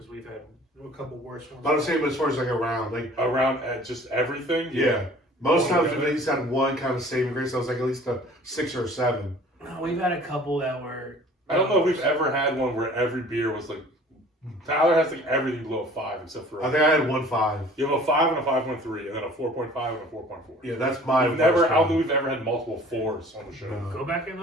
we've had a couple worse ones. But I'm saying, as far as like a round, like, Around at just everything. yeah. Most Oh, times yeah. we've at least had one kind of saving grace. So I was like at least a 6 or a 7. We've had a couple that were. I don't know if we've ever had one where every beer was like. Tyler has like everything below a 5 except for. I think I had 1.5. You have a 5 and a 5.3, and then a 4.5 and a 4.4. Yeah, that's my. We've never. worst I don't think round. we've ever had multiple 4s on the show. No. Go back and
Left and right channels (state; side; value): normal; both; correlation 0.49